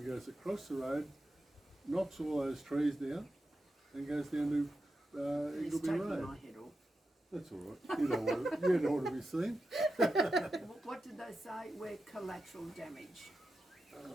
goes across the road, knocks all those trees down, and goes down to It's Eagleby taking Road. my head off. That's all right. You don't want to be seen. What did they say? We're collateral damage.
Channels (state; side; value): normal; both; correlation 0.89